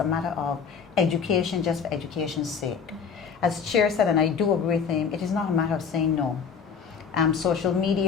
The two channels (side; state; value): right; quieter; 6.4 dB